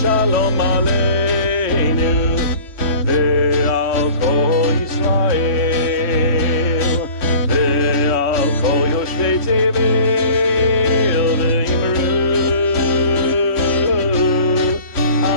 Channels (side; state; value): right; late; 3.1 ms